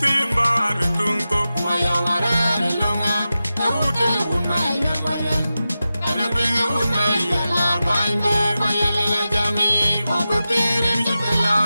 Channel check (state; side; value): inverted; both; correlation -0.93